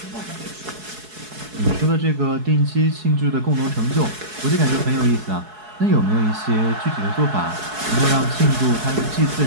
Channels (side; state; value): left; late; 4.7 ms